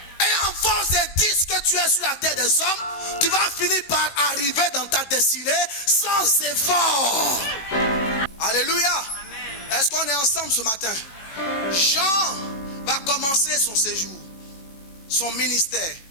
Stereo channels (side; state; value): right; late; 18 ms